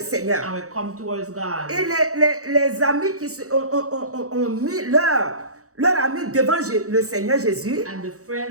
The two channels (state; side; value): late; left; 0.65 ms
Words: and will come towards God. Et les amis qui ont mis leur ami devant le Seigneur Jésus, And the